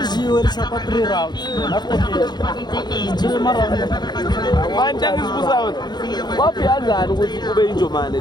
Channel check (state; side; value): late; right; 0.21 ms